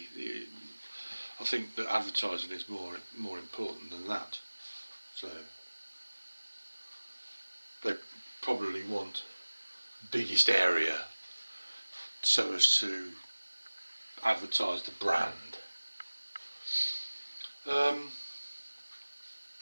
I think that advertising is more important than that. So they probably want biggest area so as to advertise the brand.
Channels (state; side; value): inverted; both; correlation -1.00